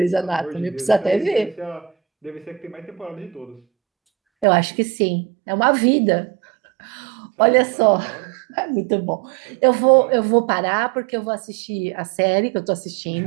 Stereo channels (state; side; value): drops out; left; at 4.5 s